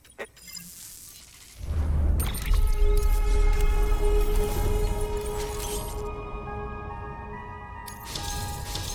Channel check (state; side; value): identical; both; correlation 1.00